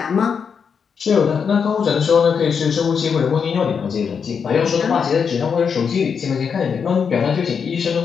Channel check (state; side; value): quieter; right; 6.5 dB